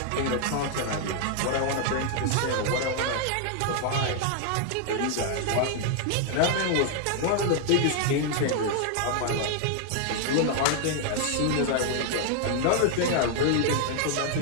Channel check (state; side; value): different; both; correlation 0.00